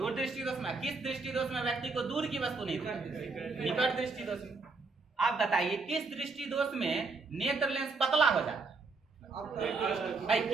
दृष्टि दोष में। किस दृष्टि दोष में व्यक्ति को दूर की वस्तु नहीं दिखाई, निकट दृष्टि दोष में। आप बताइए किस दृष्टि दोष में नेत्र लेंस पतला हो जाता है, भाई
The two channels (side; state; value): left; quieter; 4.0 dB